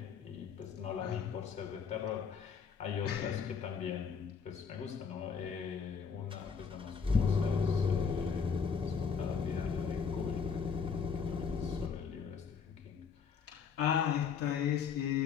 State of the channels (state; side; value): quieter; right; 6.2 dB